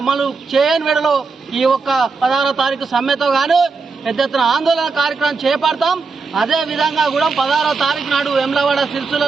చేయని వేళలో ఈ 16వ తారీఖు సమ్మెతో గాను పెద్ద ఎత్తున ఆందోళన కార్యక్రమం చేపడతాం. అదే విధంగా కూడా 16వ తారీఖు నాడు వెమ్లవాడ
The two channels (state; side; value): quieter; left; 4.5 dB